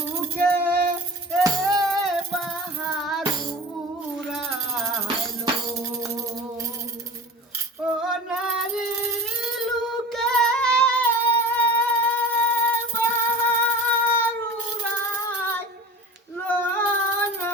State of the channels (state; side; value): normal; both; correlation 0.36